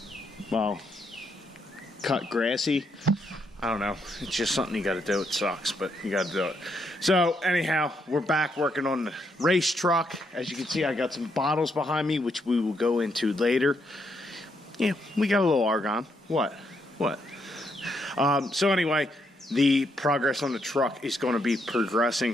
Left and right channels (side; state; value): both; normal; correlation 0.77